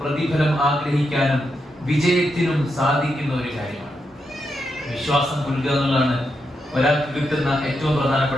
ആഗ്രഹിക്കാനും വിജയത്തിനും സാധിക്കുന്ന ഒരു കാര്യമാണ്. വിശ്വാസം പുലുക എന്നുള്ളതാണ് ഒരാൾക്ക് കിട്ടുന്ന ഏറ്റവും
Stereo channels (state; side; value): normal; both; correlation 0.84